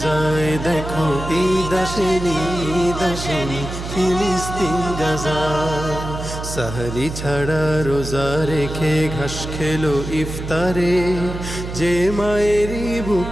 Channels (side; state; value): right; noise; hum, 7 dB below the sound